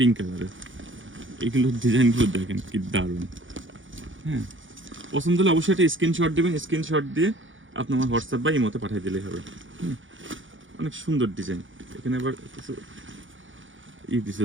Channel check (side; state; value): left; late; 0.56 ms